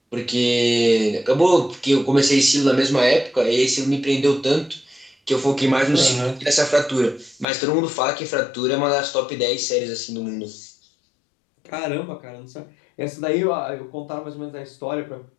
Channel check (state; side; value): drops out; right; at 7.5 s